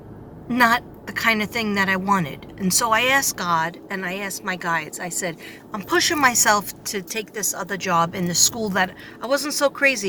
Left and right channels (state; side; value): identical; both; correlation 1.00